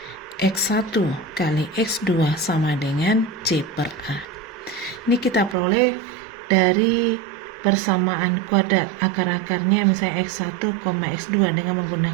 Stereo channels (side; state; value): left; drops out; at 5.6 s